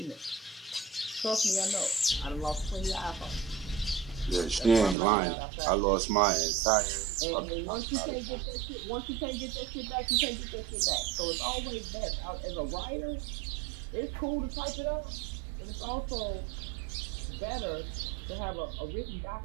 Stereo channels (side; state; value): left; drops out; at 5.0 s